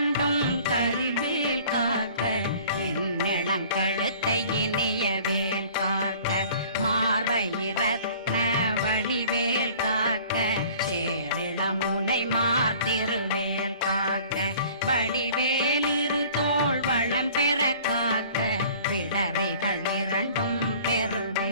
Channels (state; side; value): inverted; both; correlation -0.49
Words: கதிர்வேல் காக்க இளங்கழுத்தை இணையவேல் காக்க மார்பயிரத்ன வடிவேல் காக்க சேரிளமுனை மார்த்திருவேல் காக்க வடிவேலிரு தோள் வளம் பெற காக்க பிடரைகள் இரண்டும்